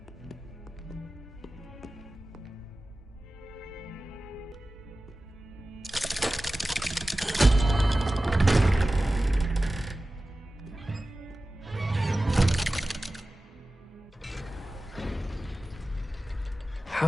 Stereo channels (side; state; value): both; normal; correlation 0.96